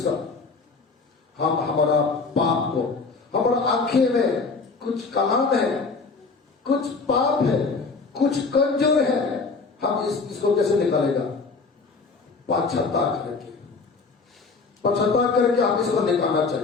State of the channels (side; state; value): right; quieter; 4.3 dB